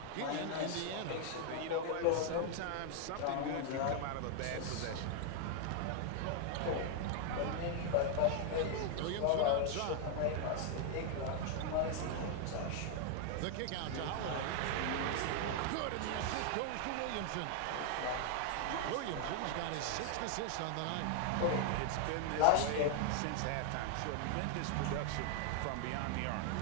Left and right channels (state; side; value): different; both; correlation 0.00